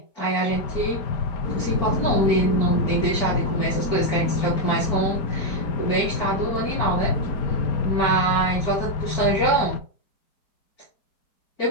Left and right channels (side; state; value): right; late; 4.5 ms